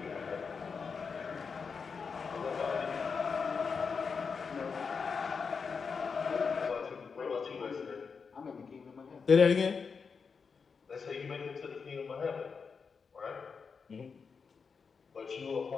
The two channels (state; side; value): quieter; right; 5.5 dB